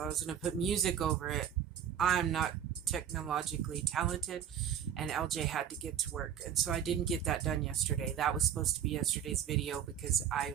I was going to put music over it. I'm not technologically talented, and LJ had to get to work, and so I didn't get that done yesterday. That was supposed to be yesterday's video because I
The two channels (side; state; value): left; quieter; 9.0 dB